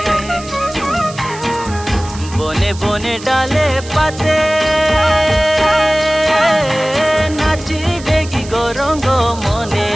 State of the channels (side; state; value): right; noise; hiss, 16 dB below the sound